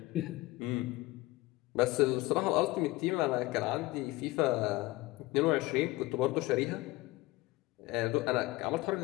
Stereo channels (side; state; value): right; quieter; 19.9 dB